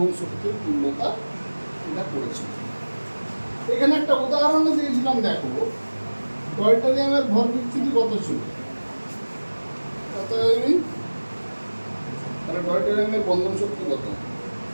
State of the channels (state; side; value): inverted; both; correlation -1.00